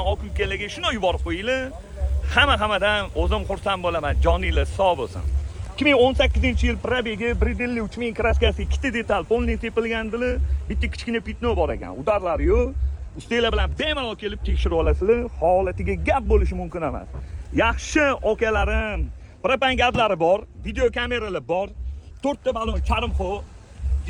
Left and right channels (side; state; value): both; identical; correlation 1.00